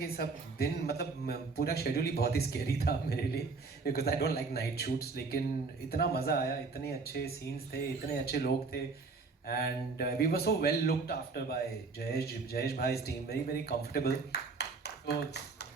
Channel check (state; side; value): quieter; left; 4.3 dB